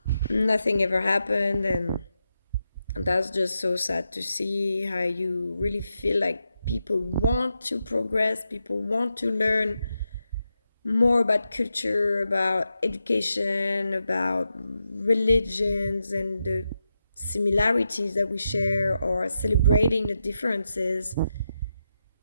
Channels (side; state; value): both; inverted; correlation -0.87